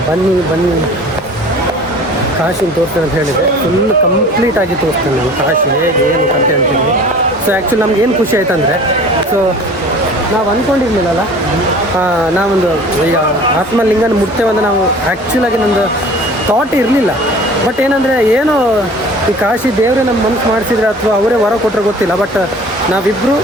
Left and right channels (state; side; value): normal; both; correlation 0.45